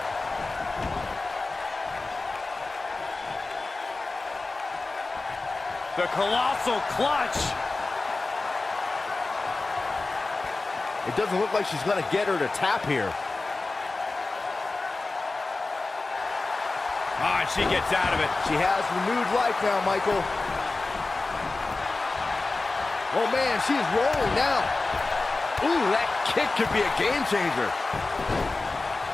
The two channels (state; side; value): quieter; right; 3.5 dB